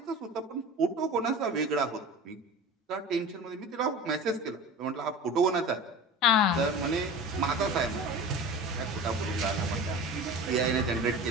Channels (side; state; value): both; normal; correlation 0.35